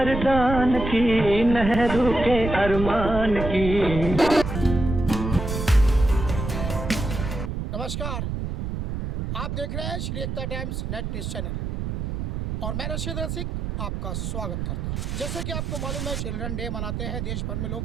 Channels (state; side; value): noise; right; rumble, 4 dB below the sound